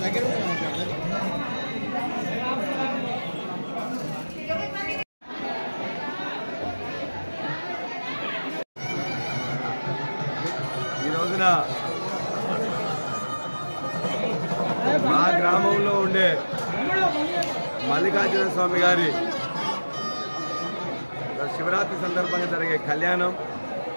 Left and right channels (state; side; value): inverted; both; correlation -1.00